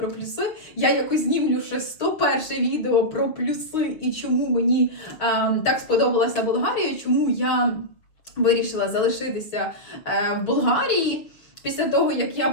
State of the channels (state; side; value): late; right; 6.3 ms